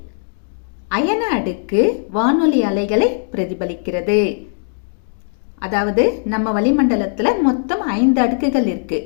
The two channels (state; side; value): silent; right; digital silence